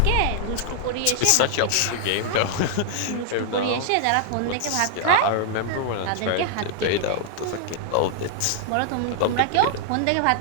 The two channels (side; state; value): both; different; correlation -0.01